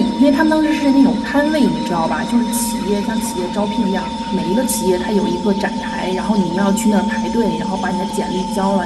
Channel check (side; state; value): both; identical; correlation 1.00